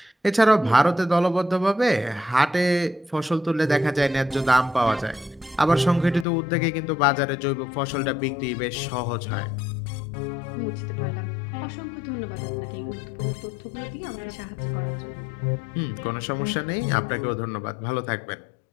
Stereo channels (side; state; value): right; drops out; at 6.2 s